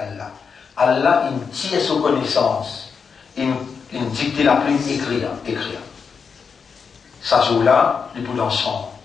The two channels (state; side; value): quieter; right; 5.9 dB